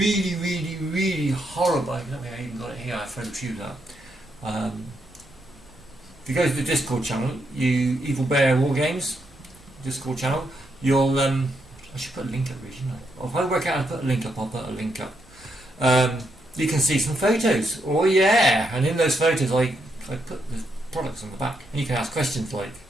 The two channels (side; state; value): both; normal; correlation 0.80